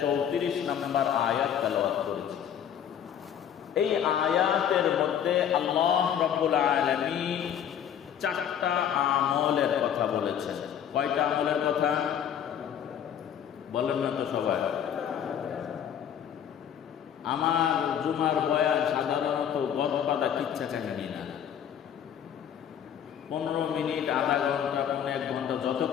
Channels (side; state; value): right; quieter; 9.1 dB